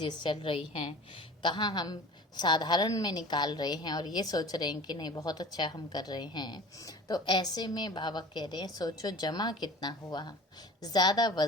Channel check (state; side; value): normal; both; correlation 0.40